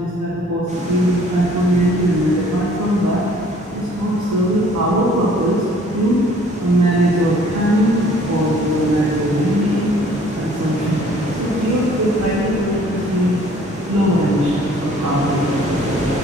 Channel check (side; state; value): both; normal; correlation 0.56